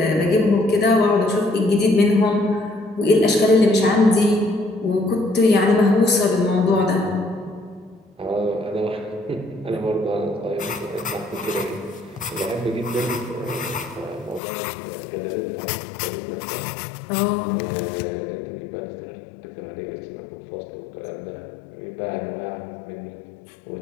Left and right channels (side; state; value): right; drops out; at 14.4 s